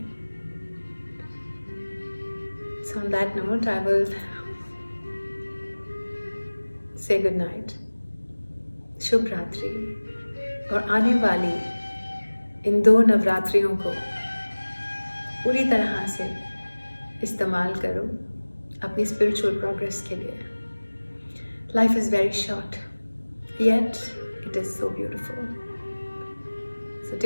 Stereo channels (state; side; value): inverted; both; correlation -1.00